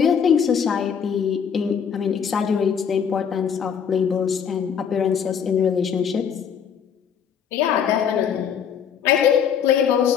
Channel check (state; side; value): quieter; right; 7.6 dB